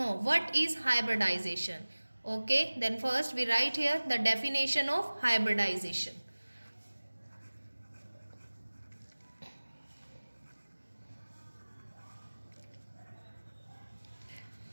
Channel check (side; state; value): both; inverted; correlation -1.00